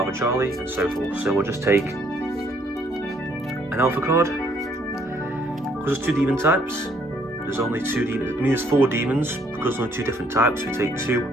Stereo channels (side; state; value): both; normal; correlation 0.66